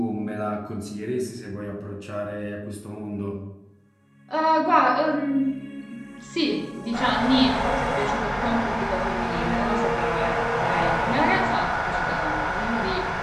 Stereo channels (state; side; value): identical; both; correlation 1.00